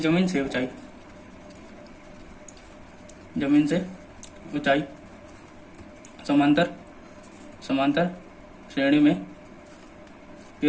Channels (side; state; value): both; identical; correlation 1.00